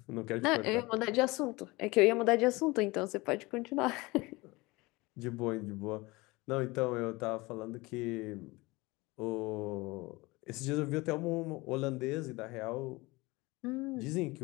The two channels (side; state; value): right; quieter; 22.9 dB